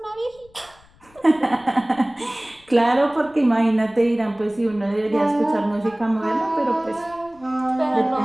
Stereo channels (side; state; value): left; noise; rumble, 29 dB below the sound